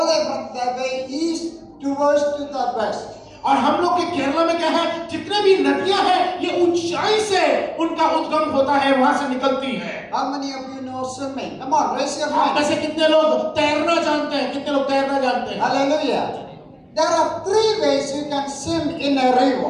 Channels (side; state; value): both; identical; correlation 1.00